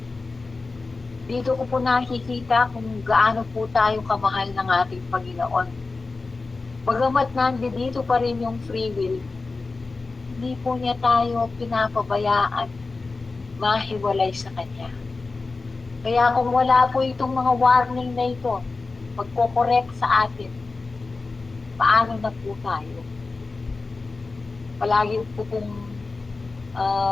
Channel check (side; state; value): right; quieter; 3.8 dB